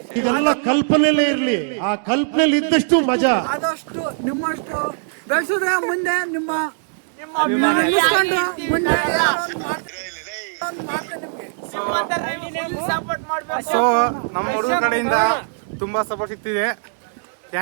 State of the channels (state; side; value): silent; left; 65 dB below the other